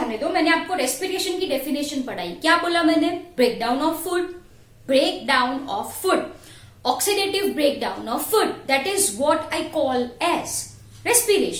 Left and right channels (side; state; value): both; identical; correlation 1.00